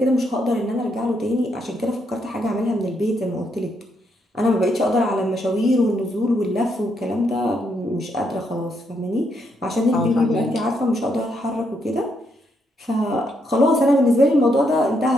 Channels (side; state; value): both; normal; correlation 0.77